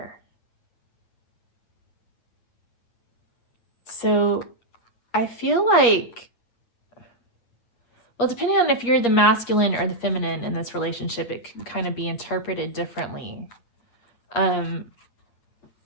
So I feel like, well, depending on if you're the masculine or the feminine in this relationship, it can kind of be interpreted differently. But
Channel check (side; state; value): right; late; 8.6 ms